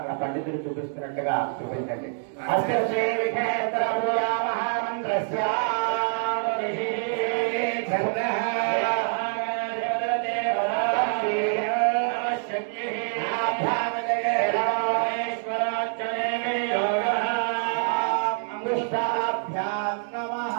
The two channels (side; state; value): left; silent; digital silence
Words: పండితులు చూపిస్తున్నట్టుగా చూపించండి.